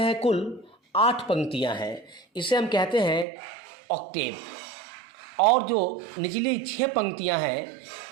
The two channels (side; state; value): left; drops out; at 3.2 s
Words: है कुल 8 पंक्तियां हैं, इसे हम कहते हैं ऑक्टेव। और जो निचली 6 पंक्तियां हैं